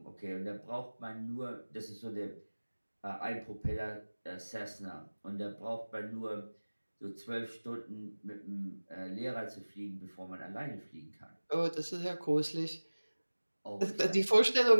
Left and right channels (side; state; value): both; inverted; correlation -1.00